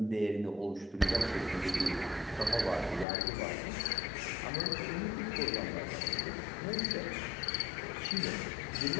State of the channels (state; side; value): drops out; right; at 3.1 s